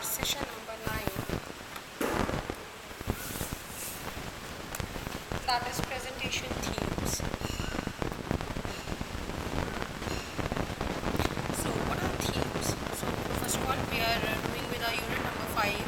session number 9, that is presentation themes. So what are themes? So first of all we are doing with our unit number 5,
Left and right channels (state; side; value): identical; both; correlation 1.00